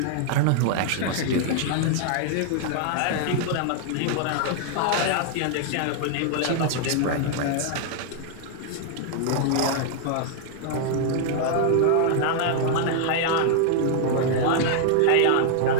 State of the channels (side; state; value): both; different; correlation 0.00